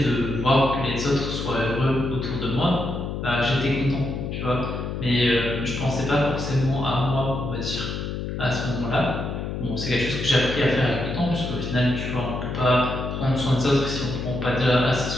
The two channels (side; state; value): left; noise; hum, 4 dB below the sound